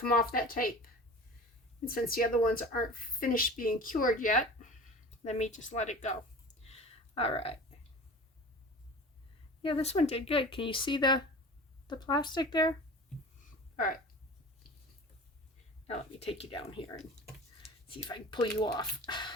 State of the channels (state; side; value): normal; both; correlation 0.38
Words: off that tape. And since the other ones aren't finished being cured yet, let me just let it go. All right. Yeah, this one did good. Can you see the plastic there? All right. Now let me take you down here and see if I can pull you off.